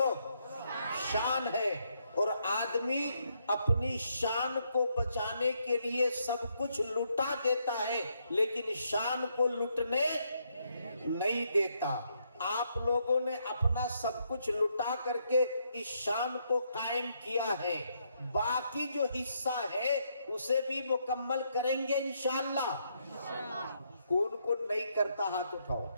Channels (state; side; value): inverted; both; correlation -0.76